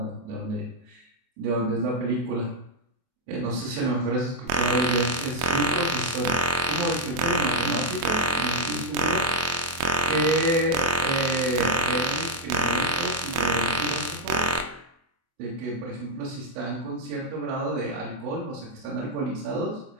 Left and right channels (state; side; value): late; left; 24 ms